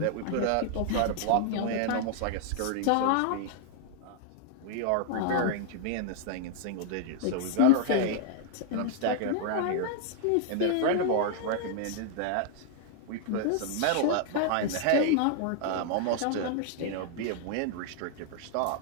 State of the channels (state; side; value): different; both; correlation 0.00